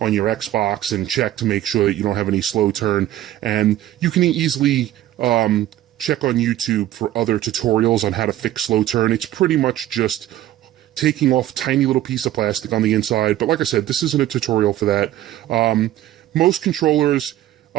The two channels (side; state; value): left; quieter; 13.6 dB